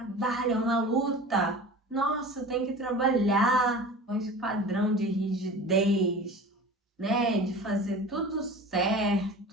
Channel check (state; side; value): normal; both; correlation 0.37